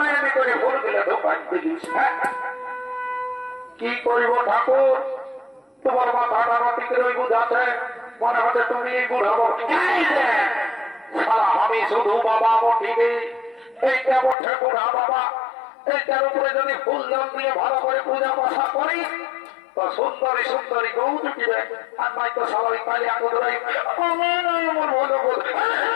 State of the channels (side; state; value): right; drops out; at 14.4 s